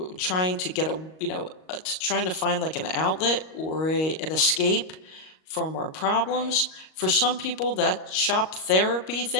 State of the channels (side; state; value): right; late; 38 ms